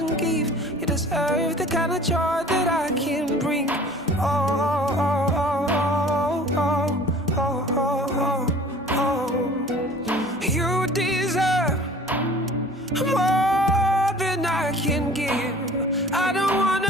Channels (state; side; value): normal; both; correlation 0.47